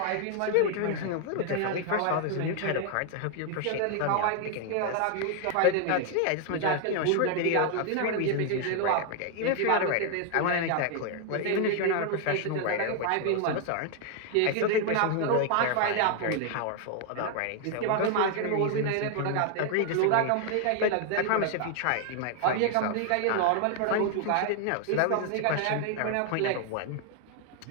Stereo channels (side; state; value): both; different; correlation 0.00